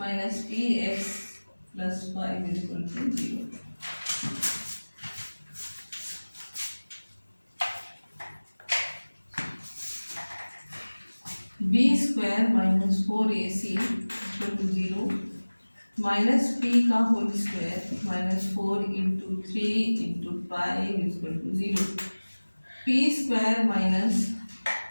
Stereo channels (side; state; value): both; inverted; correlation -1.00